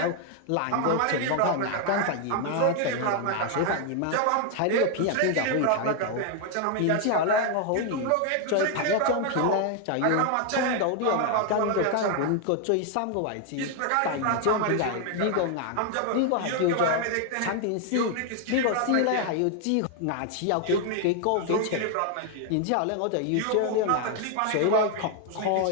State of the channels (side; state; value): both; different; correlation 0.01